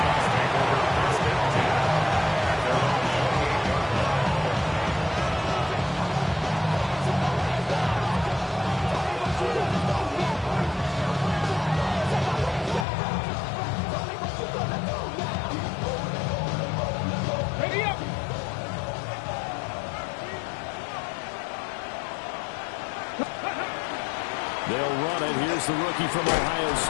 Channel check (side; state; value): right; drops out; at 12.9 s